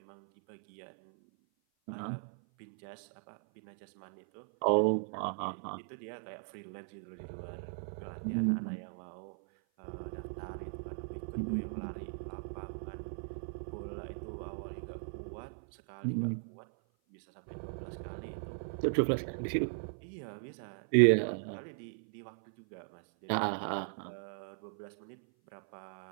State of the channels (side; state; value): left; silent; 53 dB below the other